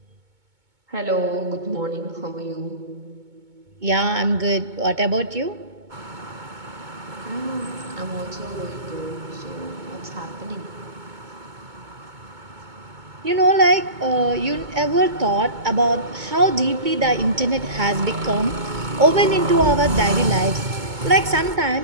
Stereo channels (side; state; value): left; late; 2.2 ms